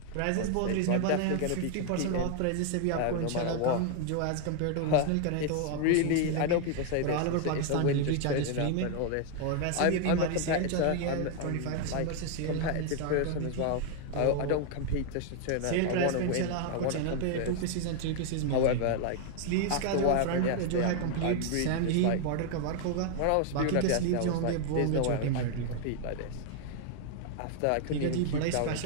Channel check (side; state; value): both; different; correlation 0.00